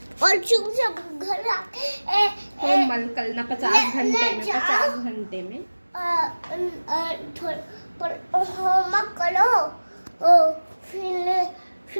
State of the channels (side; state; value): both; inverted; correlation -1.00